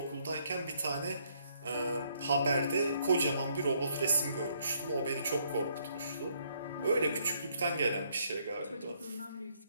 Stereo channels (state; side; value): inverted; both; correlation -0.70